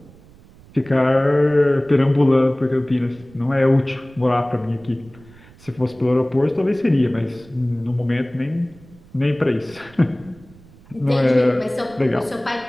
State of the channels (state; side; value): noise; right; rumble, 24 dB below the sound